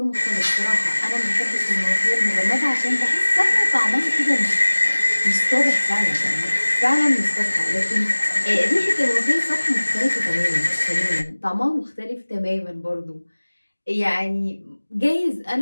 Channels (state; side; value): inverted; both; correlation -1.00